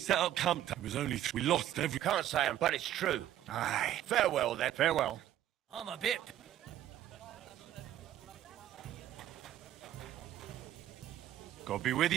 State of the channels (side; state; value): left; quieter; 12.2 dB